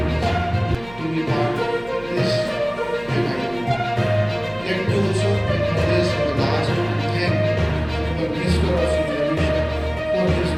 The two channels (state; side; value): noise; right; hum, 20 dB below the sound